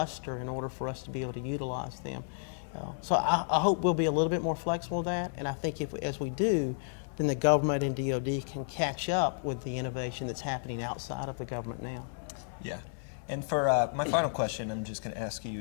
in order for us to be able to utilize them. So I hope we'll be a little bit more flexible with that, and I think as we do, then the government and DoD can catch up with the innovation that's happening outside of the government now. Yeah. And for my final question, I'm just going to ask you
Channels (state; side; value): silent; right; 56 dB below the other